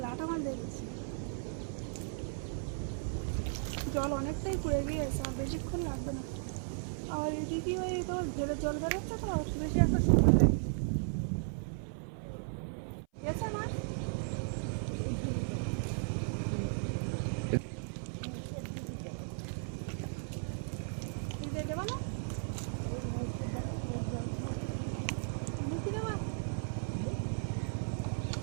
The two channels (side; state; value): left; silent; 54 dB below the other